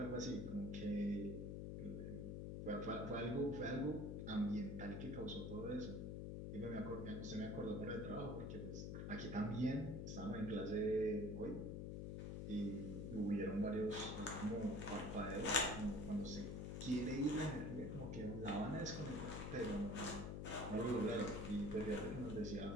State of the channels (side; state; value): left; noise; hum, 4 dB below the sound